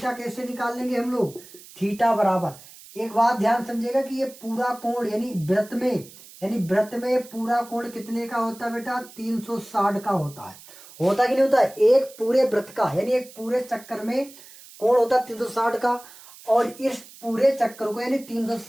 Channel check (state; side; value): noise; right; hiss, 20 dB below the sound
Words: कैसे निकाल लेंगे हम लोग, थीटा बराबर, एक बात ध्यान समझिएगा कि ये पूरा कोण यानी वृत्त में पूरा कोण कितने का होता है बेटा, 360 का होता है, होता कि नहीं होता, एक पूरे वृत्त का यानी एक पूरे चक्कर में कोण होता 360 का, और इस पूरे चक्कर को यानी